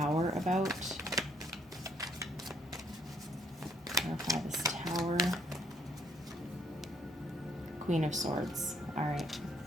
about? Clarify this Tower. Queen of Swords, all right.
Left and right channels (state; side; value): normal; both; correlation 0.68